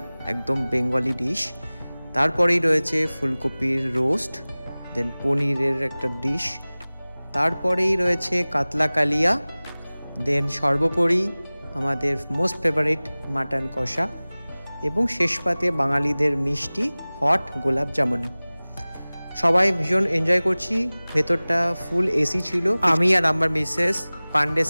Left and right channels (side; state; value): both; inverted; correlation -0.99